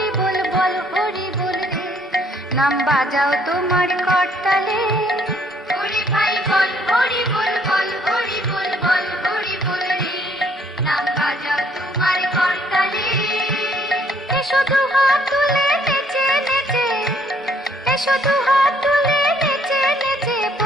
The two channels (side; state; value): both; normal; correlation 0.65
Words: বল, বল হরি বল রে। নাম বাজাও তোমার করতালে। ওরে ভাই বল হরি বল, বল হরি বল, বল হরি বল রে। নাম বাজাও তোমার করতালে। এসো দু হাত তুলে নেচে নেচে, এসো দু হাত তুলে নেচে নেচে